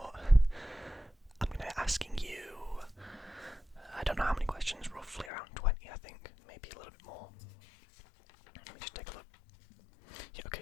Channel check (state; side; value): drops out; right; at 5.3 s